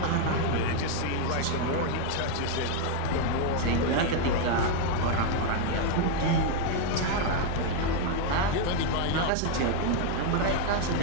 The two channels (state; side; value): different; both; correlation 0.01